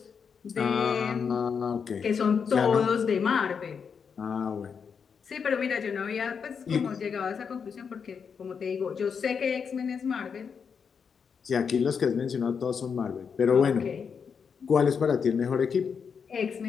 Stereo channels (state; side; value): quieter; right; 6.4 dB